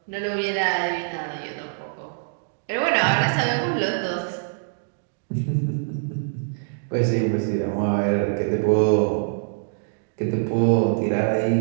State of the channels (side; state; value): left; silent; digital silence